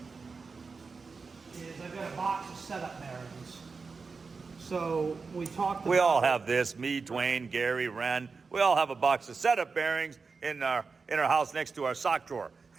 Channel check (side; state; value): left; quieter; 4.7 dB